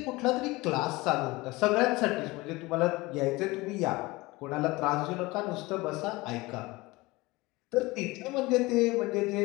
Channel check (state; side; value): quieter; right; 21.8 dB